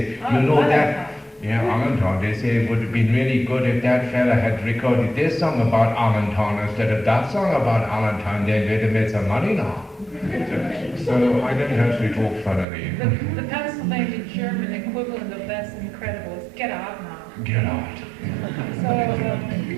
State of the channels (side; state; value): left; drops out; at 12.7 s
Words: you know that, yeah, Allentown, they say it would have been really good if that fella had recorded this song about Allentown instead of that song about Allentown, then they'd have made some money now. So I don't actually talk funnily. The Pennsylvania German equivalent of that's incredible is get out now. Get out. So